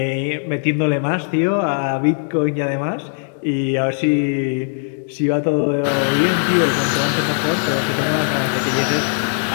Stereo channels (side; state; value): right; silent; 59 dB below the other